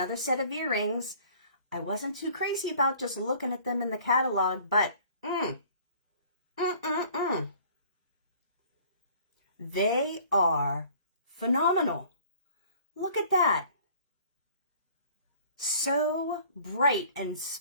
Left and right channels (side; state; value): both; inverted; correlation -0.52